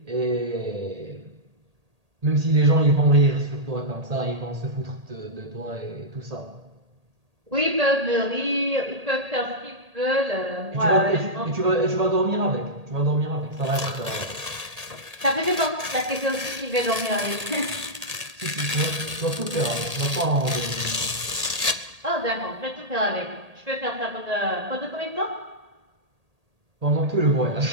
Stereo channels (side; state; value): left; late; 1.8 ms